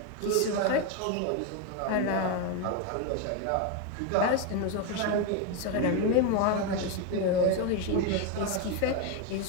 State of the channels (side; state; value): both; different; correlation 0.02